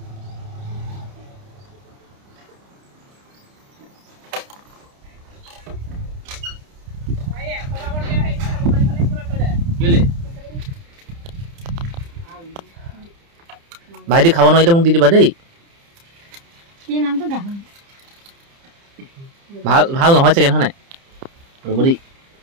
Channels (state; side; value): late; left; 30 ms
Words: ভাইটি খাব নোৱাৰিলে মোক দি দিবা দেই ভাল ভাল নহয় চাগে নহয় ৰ'ব দেই